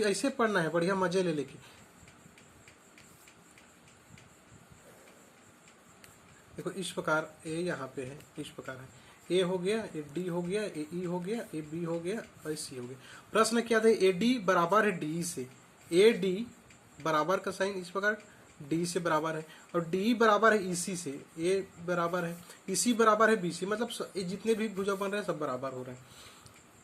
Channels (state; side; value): identical; both; correlation 1.00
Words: पढ़ना है बढ़िया मजे ले लेके। देखो इस प्रकार ए यहाँ पे है, इस प्रकार है, ए हो गया, ए डी हो गया, ए ई हो गया, ए बी हो गया और सी हो गया। प्रश्न क्या था? ए डी बराबर है डी से, ए डी बराबर का साइन इस प्रकार डी से बराबर है, और डी बराबर है इसी से, ए बराबर है इसी बराबर है बी से, मतलब ये जितने भी भुजा बन रहे हैं सब बराबर हो रहे हैं।